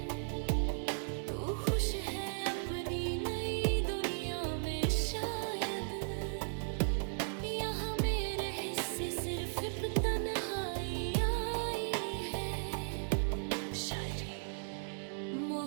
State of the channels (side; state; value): left; silent; digital silence